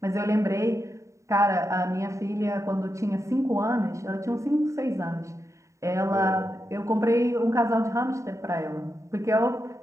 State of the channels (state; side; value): late; left; 0.15 ms